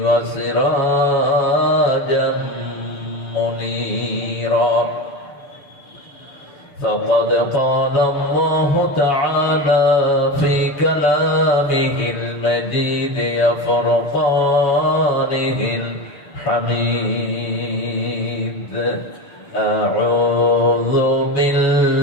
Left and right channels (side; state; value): right; late; 6.8 ms